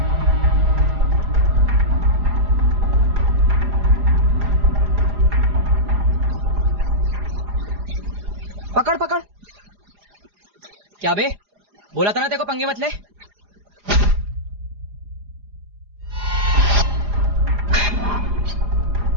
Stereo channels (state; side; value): late; left; 4.9 ms